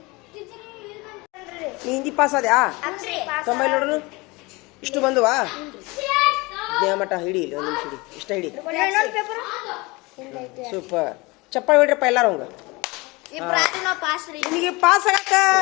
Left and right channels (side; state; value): right; quieter; 24.5 dB